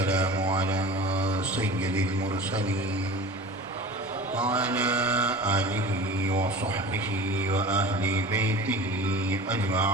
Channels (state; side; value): normal; both; correlation 0.37